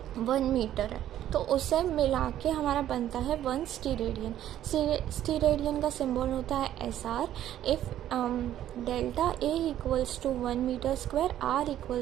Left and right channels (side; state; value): left; quieter; 11.9 dB